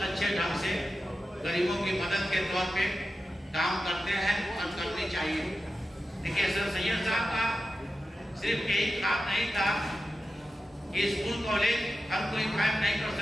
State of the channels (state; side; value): normal; both; correlation 0.92